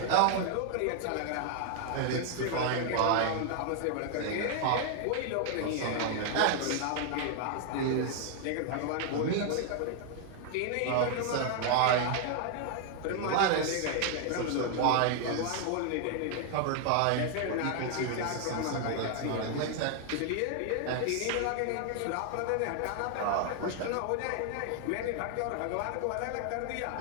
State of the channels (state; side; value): different; both; correlation 0.00